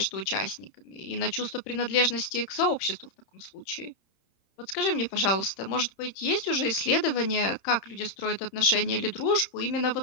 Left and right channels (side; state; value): right; late; 30 ms